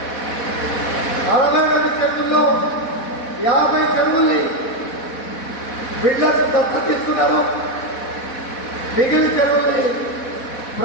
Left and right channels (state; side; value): late; right; 4.1 ms